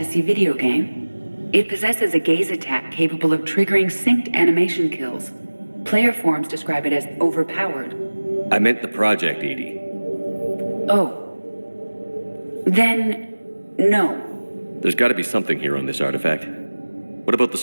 video game. It possesses a gaze attack capable of triggering synced animation kills. Player forums describe it as overpowered. I meant the project, Edie. Oh. Then, no. There's got to be something here on this artifact. What about the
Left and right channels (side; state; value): both; inverted; correlation -1.00